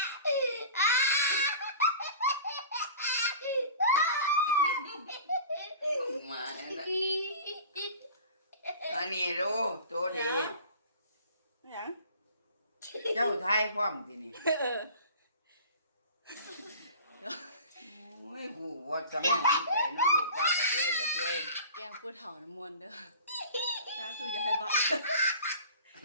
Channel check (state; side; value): inverted; both; correlation -0.40